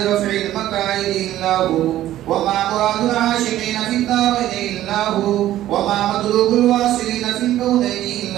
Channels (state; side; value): quieter; left; 13.5 dB